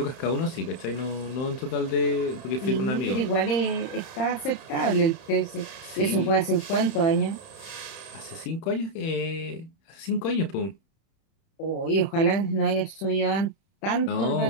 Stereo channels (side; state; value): right; late; 30 ms